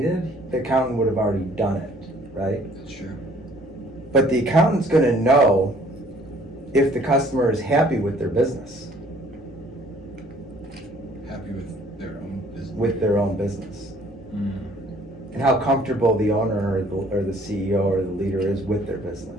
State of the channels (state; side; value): normal; both; correlation 0.57